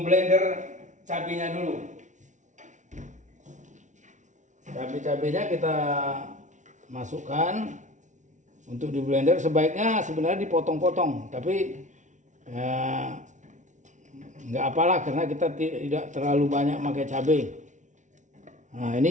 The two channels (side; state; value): left; late; 0.36 ms